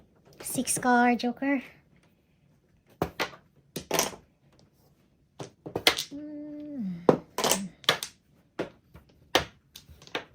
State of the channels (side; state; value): both; identical; correlation 1.00